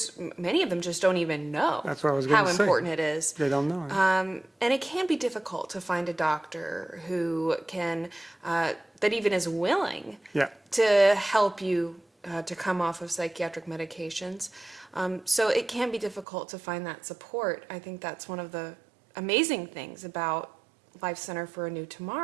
many of them just don't even know That's what I was how gonna say. important it is. They don't know. And it can be difficult to find a doctor who can, that even is willing Yeah. to help you to come off of psychiatric medications. So it can be difficult to find that support. I think that's one of the amazing things about Life Center for a New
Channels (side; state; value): left; drops out; at 16.2 s